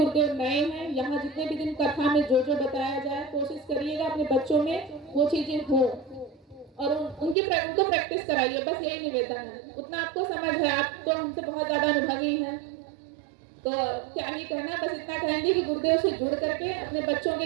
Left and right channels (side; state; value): left; drops out; at 7.4 s